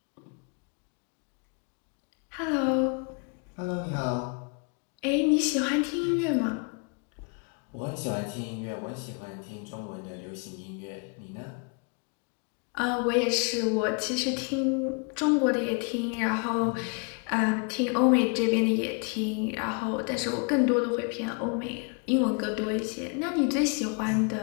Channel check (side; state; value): right; quieter; 36.5 dB